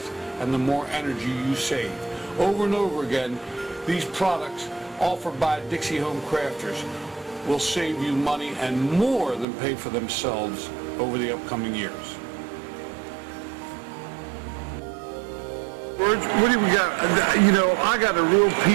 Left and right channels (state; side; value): drops out; left; at 9.5 s